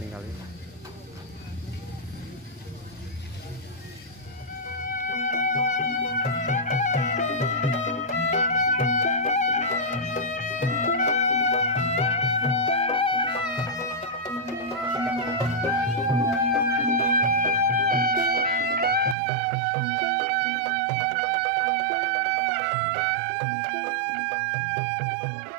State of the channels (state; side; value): drops out; left; at 19.2 s